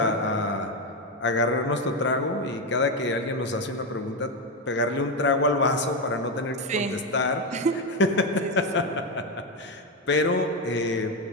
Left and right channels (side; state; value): both; normal; correlation 0.10